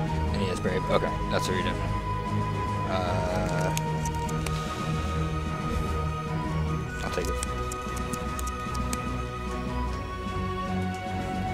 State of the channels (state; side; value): identical; both; correlation 1.00